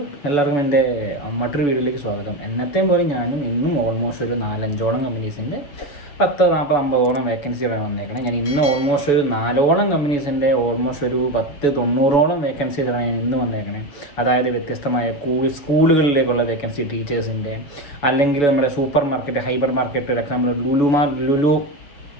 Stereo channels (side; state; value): right; late; 7.0 ms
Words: എല്ലാവർക്കും എൻ്റെ മറ്റൊരു വീഡിയോയിലേക്ക് സ്വാഗതം. എന്നത്തെയും പോലെ ഞാനും ഇന്നും ഓൾമോസ്റ്റ് ഒരു 4-5ഓളം കമ്പനീസിൻ്റെ 10, 40, 50ഓളം വേക്കൻസികളാണ് വന്നേക്കണം. ഞാൻ ഇന്ന് ഓൾമോസ്റ്റ് ഒരു 4ഓളം കമ്പനീസിൻ്റെ ഓൾമോസ്റ്റ് ഒരു 10, 90ഓളം വേക്കൻസികളാണ് ഞാൻ ഇന്ന് വന്നേക്കണേ. അതായത് വ്യത്യസ്തമായ സ്കൂളുകളിലേക്കുള്ള വേക്കൻസി, ടീച്ചേഴ്സിൻ്റെ, അല്ലെങ്കിൽ നമ്മുടെ സൂപ്പർ മാർക്കറ്റ്, ഹൈപ്പർ മാർക്കറ്റ്, ഒരു example